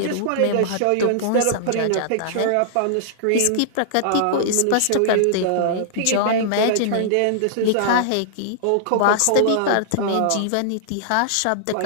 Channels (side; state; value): both; different; correlation -0.01